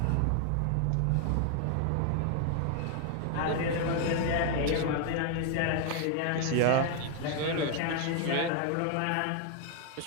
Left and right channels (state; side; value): different; both; correlation 0.01